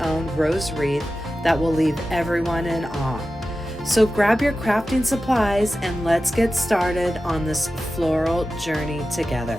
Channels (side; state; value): both; normal; correlation 0.94